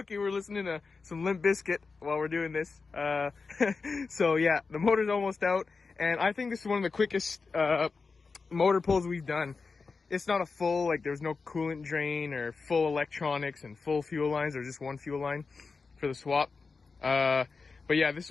We're listening to some Limp Bizkit while we're doing this. So yeah, the motor's almost out, and I think this is one of the quickest motor pulls we've done. It's not a full, like there's no coolant drain or full electronics and full fuel lines, or just one fuel line for the swap. But yeah, this is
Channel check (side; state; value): right; quieter; 4.5 dB